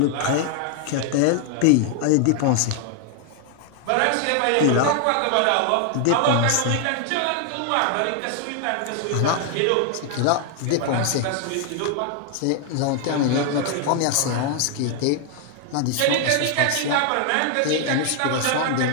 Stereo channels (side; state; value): both; different; correlation 0.00